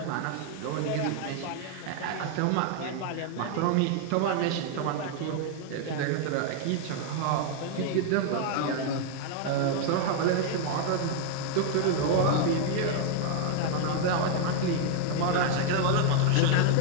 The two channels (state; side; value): different; both; correlation 0.00